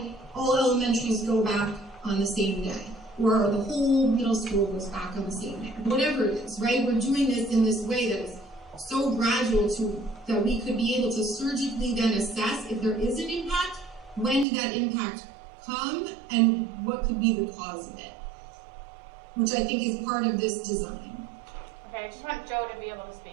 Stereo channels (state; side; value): drops out; left; at 14.5 s